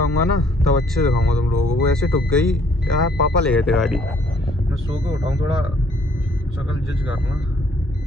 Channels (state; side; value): normal; both; correlation 0.63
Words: ना, तब अच्छे से दिखाऊंगा तुम लोगों को। वो ऐसे ठुक गई यार, पापा ले गए थे गाड़ी, मैं सो के उठाऊँ, थोड़ा शक्ल जज करना,